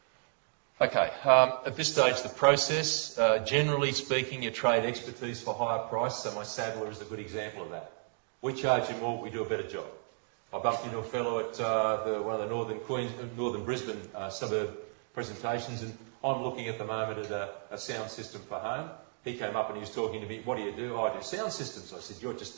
Okay, at this stage the process, generally speaking, you trade expertise for higher price, so my saddler is a good example of that. We charge you more, we do a better job. I bumped into a fellow at one of the northern Brisbane suburb presentations, and I'm looking at the moment at a sound system for home. He came up and he was talking to me, what do you do? Oh, I do sound systems. I said, you're just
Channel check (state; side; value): silent; left; 56 dB below the other